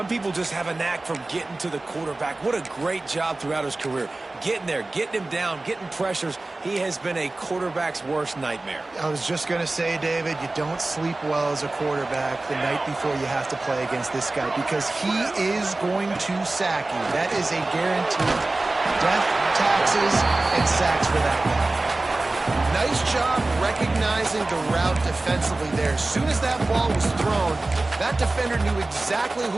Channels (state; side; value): quieter; left; 3.0 dB